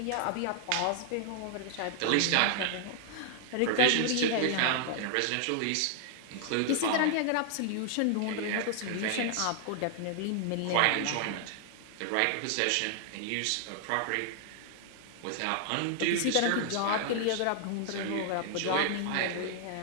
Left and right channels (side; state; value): both; different; correlation 0.00